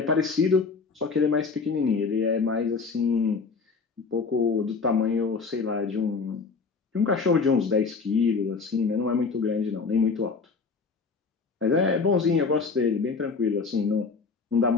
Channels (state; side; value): quieter; right; 4.7 dB